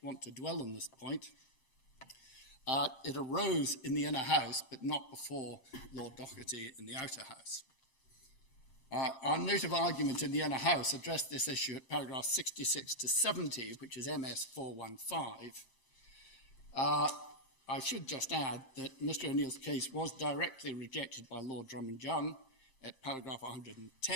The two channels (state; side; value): late; right; 7.6 ms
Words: want to dwell on this point. It arose in the inner house, but not before Lord Doherty in the outer house. Our note of argument in the inner house addressed this issue at paragraph 66 to 70, which is MS 415. I should just add that Mr. O'Neill's case was directly rejected by Lord Drummond Young at paragraph